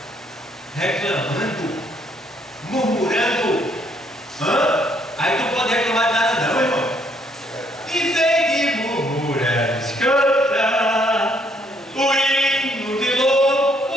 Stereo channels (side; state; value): both; normal; correlation 0.68